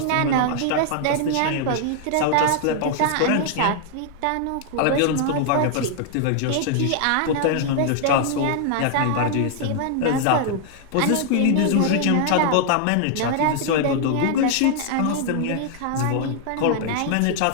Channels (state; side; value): different; both; correlation 0.00